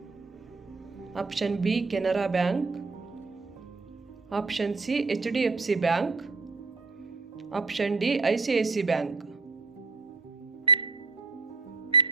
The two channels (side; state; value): left; quieter; 4.0 dB